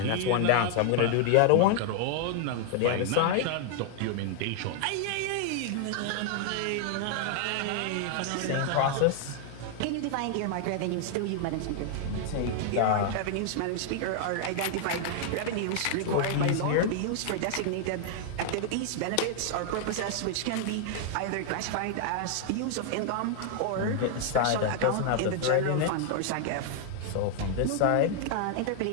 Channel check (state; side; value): different; both; correlation 0.00